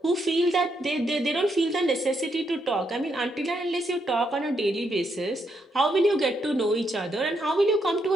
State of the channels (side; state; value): both; normal; correlation 0.78